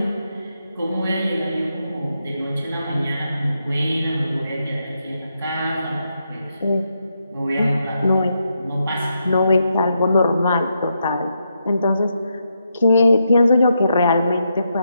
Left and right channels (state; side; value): inverted; both; correlation -0.82